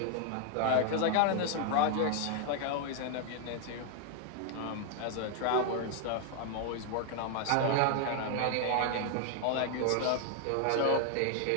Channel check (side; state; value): both; different; correlation 0.00